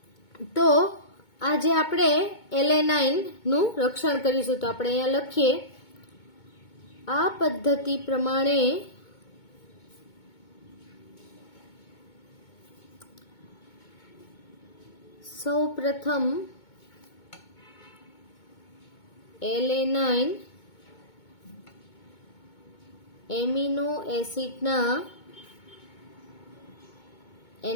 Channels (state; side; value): late; right; 2.2 ms